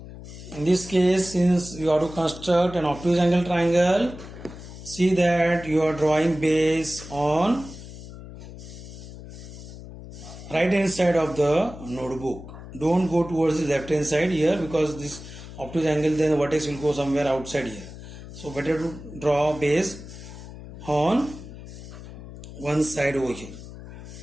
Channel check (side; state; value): left; noise; hum, 14 dB below the sound